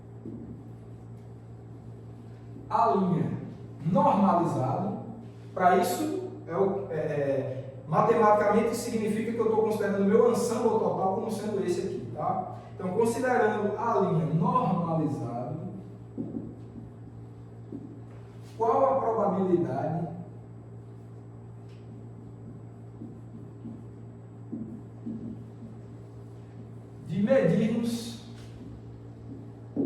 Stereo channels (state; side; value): identical; both; correlation 1.00